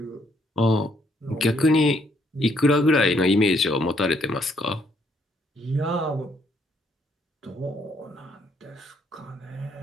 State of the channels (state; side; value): normal; both; correlation 0.69